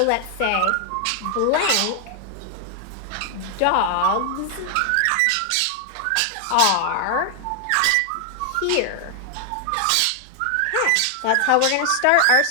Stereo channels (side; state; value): both; different; correlation 0.00